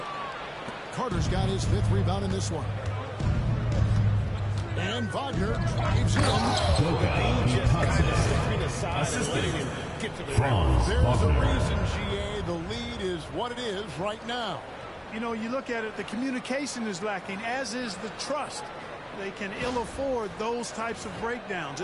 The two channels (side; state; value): both; identical; correlation 1.00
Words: Carter's got his 5th rebound in this one. And Wagner drives in. Just kind of stepping aside and letting him get to the rim. There's a reason, GA. The lead is what it is right now. You know, you look at it, the communication is lacking, as is the trust. They can ill afford those types of breakdowns.